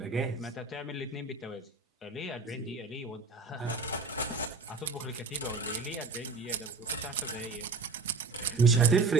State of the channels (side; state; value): left; quieter; 3.9 dB